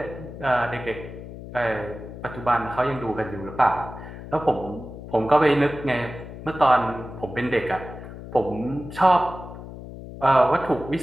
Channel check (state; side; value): noise; left; hum, 12 dB below the sound